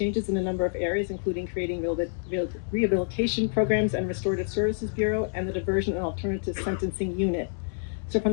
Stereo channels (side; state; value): right; silent; 60 dB below the other